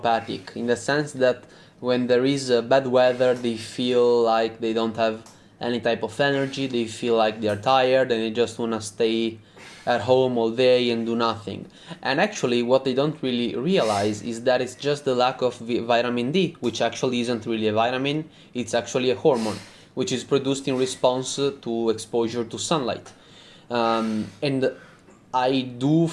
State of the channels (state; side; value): identical; both; correlation 1.00